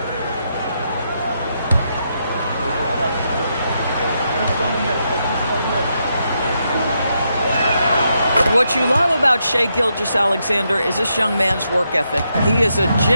What you love about Shai Gilgeous-Alexander is this young man's work ethic. He is a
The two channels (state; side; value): inverted; both; correlation -0.81